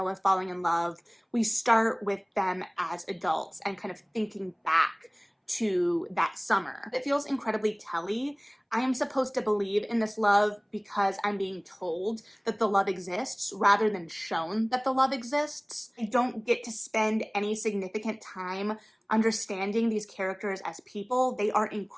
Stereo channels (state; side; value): identical; both; correlation 1.00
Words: falling in love. We start with them as adults and kind of thinking back to that summer. It feels incredibly telly. I am supposed to believe in this love because I'm being told that the love exists rather than shown that the love exists. I don't get to spend any significant time understanding these characters as people. They are